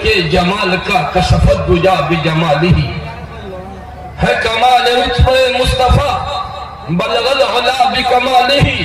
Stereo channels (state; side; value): identical; both; correlation 1.00